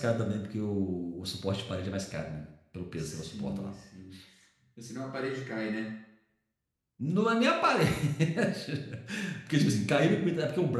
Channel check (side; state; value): both; identical; correlation 1.00